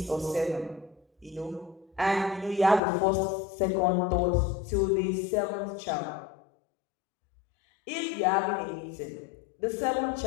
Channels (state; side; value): drops out; right; at 2.8 s